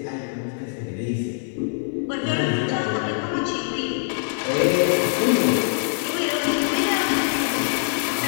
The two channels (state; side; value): silent; right; 56 dB below the other